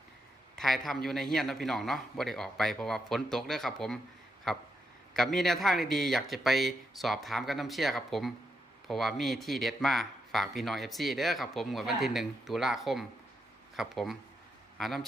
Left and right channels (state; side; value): normal; both; correlation 0.82